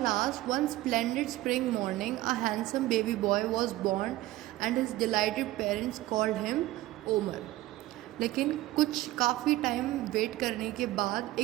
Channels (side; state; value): left; quieter; 16.7 dB